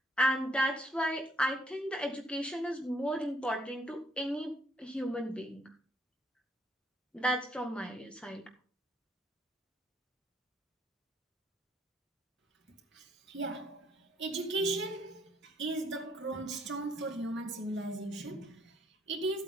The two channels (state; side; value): normal; both; correlation 0.68